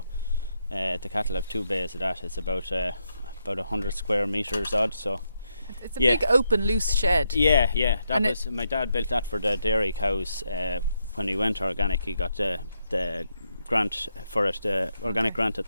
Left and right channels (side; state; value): both; inverted; correlation -0.81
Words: the cattle have 2 bays of that. It's about 100 square metres odd. So it's a big open loose shed. Yeah. My dad built that for the dairy cows. When he went organic, he got the grant for it, the organic grant at